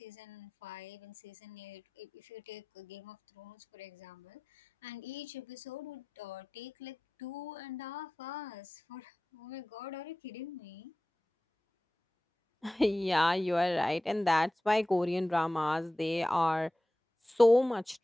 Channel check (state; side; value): normal; both; correlation 0.96